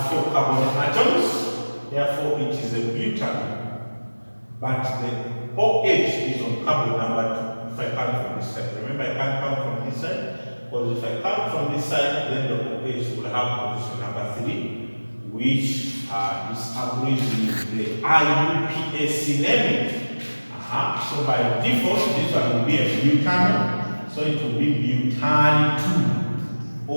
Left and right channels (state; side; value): inverted; both; correlation -1.00